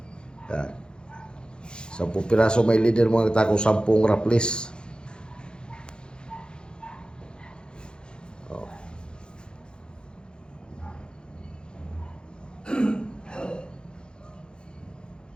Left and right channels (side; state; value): right; late; 0.049 ms